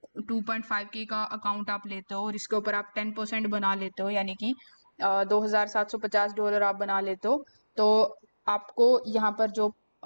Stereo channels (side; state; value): both; inverted; correlation -1.00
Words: 2.5K का अकाउंट आप लेते हो और इसके ऊपर आप 10% बना लेते हो, यानी कि $2,750 आप बना लेते हो, तो आपको यहाँ पर जो